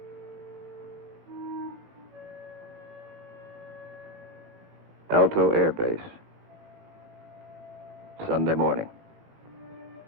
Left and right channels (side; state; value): left; late; 18 ms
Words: Alto Air Base. Sunday morning.